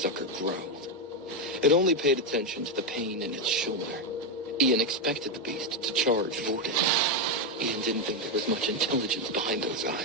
growled. It only paid attention to the pain in its shoulder. Ian expected the beast to charge Vorden. Ian didn't think there was much intelligence behind those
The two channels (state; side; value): normal; both; correlation 0.06